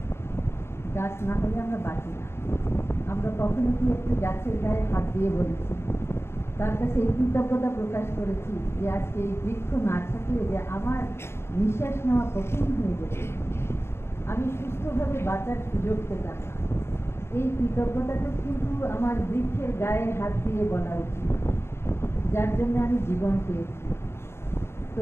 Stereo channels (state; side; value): late; right; 0.12 ms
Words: গাছ না হলে আমরা বাঁচি না। আমরা কখনো কি একটু গাছের গায়ে হাত দিয়ে বলেছি, তার কাছে এই কৃতজ্ঞতা প্রকাশ করেছি যে আজকে এই বৃক্ষ না থাকলে যে আমার নিঃশ্বাস নেওয়া কঠিন হয়ে যেত, আমি সুস্থভাবে বাঁচার সুযোগ পেতাম না। এই কৃতজ্ঞতাটা কিন্তু আমার বৃক্ষের গায়ে হাত দিয়ে বলা উচিত, যার জন্য আমি জীবন পেয়েছি। তো